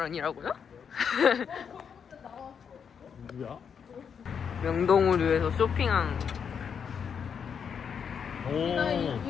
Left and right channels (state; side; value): quieter; right; 7.1 dB